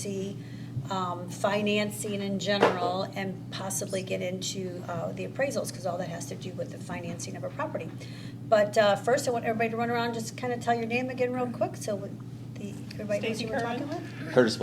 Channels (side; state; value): both; identical; correlation 1.00